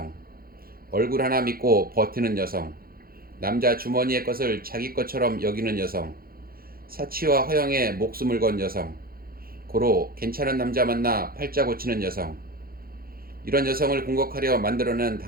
얼굴 하나 믿고 버티는 여성, 남자 주머니의 것을 자기 것처럼 여기는 여성, 사치와 허영에 목숨을 건 여성, 고로 괜찮은 남자 만나 팔자 고치는 여성, 이런 여성을 공격하려 만들어낸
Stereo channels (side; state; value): left; late; 0.43 ms